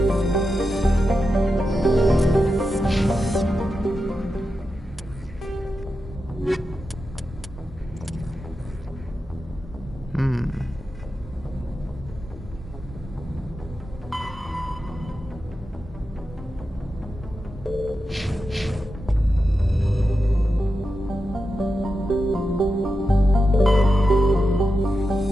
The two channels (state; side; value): normal; both; correlation 0.89